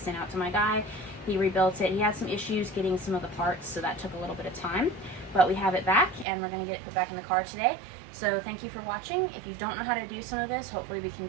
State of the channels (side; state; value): left; drops out; at 6.2 s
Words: out to my guy. He rebuilt it. He had some issues getting some of the parts, so that took a little bit of time. But we have it back, and we're going to get it put back in the car today. So thank you for watching. If you don't know how to do some of this, hopefully we can